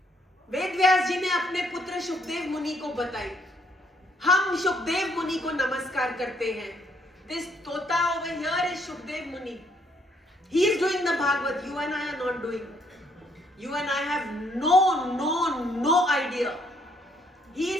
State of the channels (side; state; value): both; normal; correlation 0.69